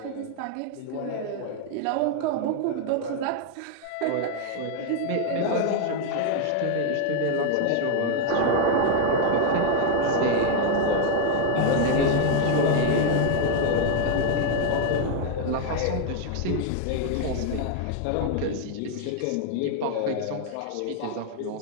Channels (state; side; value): different; both; correlation 0.00